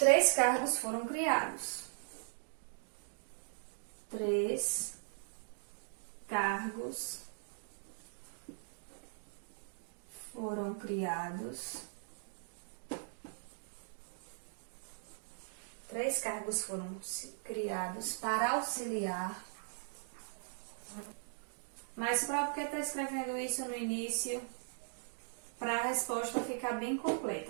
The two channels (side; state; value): left; silent; digital silence